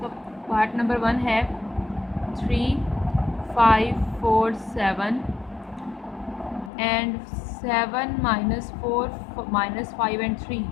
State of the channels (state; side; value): drops out; right; at 6.7 s